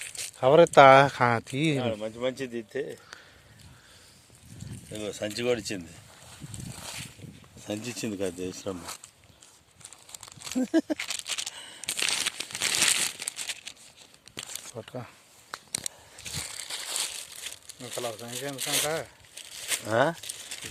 కవర్ ఎత్తా తీ. మంచిది తీస్తే సంచి కూడా ఇచ్చింది. సంచి ఇచ్చింది కదా దేశమ్మ. పట్టుకో అసలు సంచి ఎందుకంట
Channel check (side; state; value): both; identical; correlation 1.00